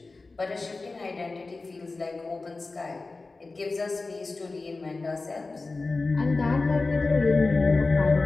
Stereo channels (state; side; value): quieter; right; 3.6 dB